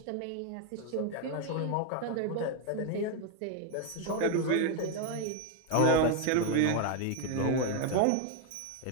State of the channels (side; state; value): both; different; correlation 0.01